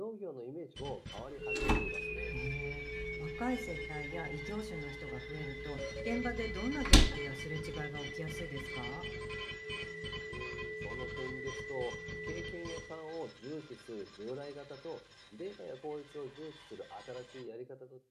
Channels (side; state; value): both; identical; correlation 1.00